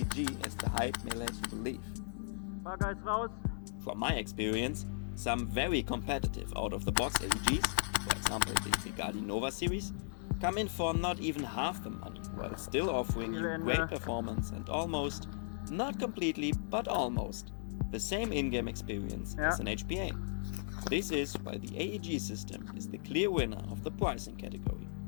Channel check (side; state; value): right; silent; digital silence